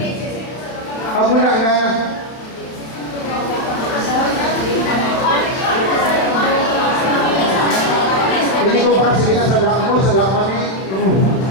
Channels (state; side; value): late; right; 31 ms